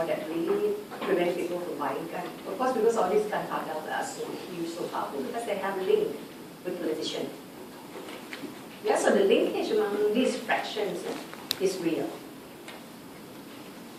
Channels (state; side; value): identical; both; correlation 1.00